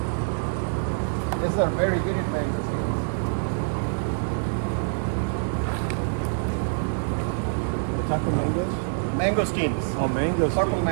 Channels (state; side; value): silent; left; digital silence